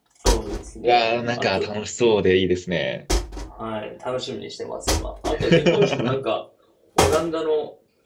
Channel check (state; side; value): identical; both; correlation 1.00